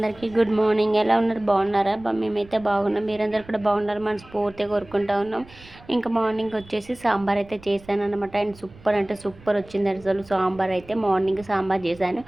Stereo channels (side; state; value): right; noise; rumble, 22 dB below the sound